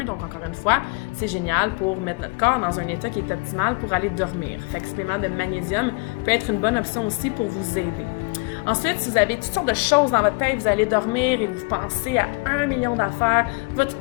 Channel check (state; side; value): quieter; right; 30.2 dB